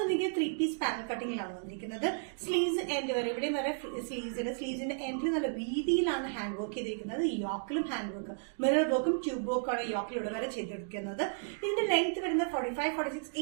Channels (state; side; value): silent; left; digital silence